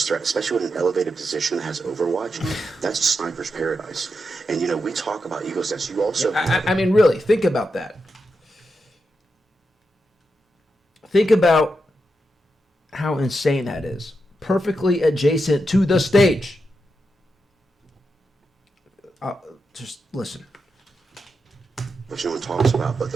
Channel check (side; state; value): both; normal; correlation 0.86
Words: threat, especially with an elevated position that has overwatch. That's a sniper's paradise. And we talk about Eagle's Nest. You also I mean, really, think about that. Think about how insane that is. Perfectly adjacent to the stage. Just listen. which no one talks about, but